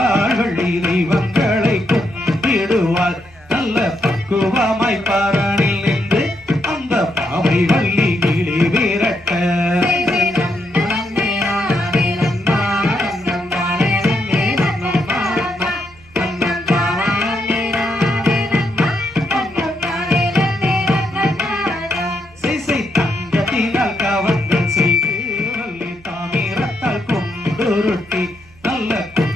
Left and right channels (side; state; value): right; noise; hum, 27 dB below the sound